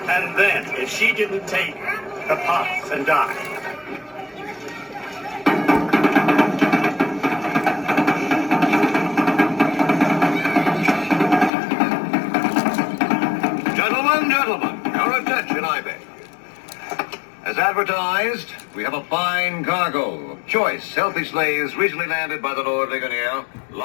And then, if she didn't take the puff and die. Gentlemen, your attention, I beg. As advertised, we have a fine cargo of choice, healthy slaves recently landed by the Lord Ligonier,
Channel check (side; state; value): right; drops out; at 11.5 s